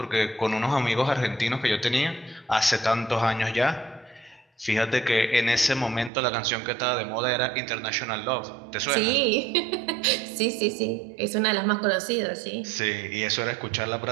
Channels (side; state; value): left; drops out; at 6.1 s